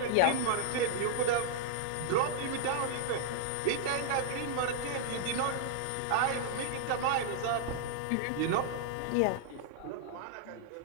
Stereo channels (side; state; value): both; different; correlation -0.01